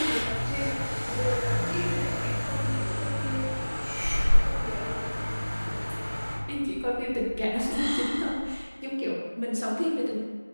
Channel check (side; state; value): both; inverted; correlation -1.00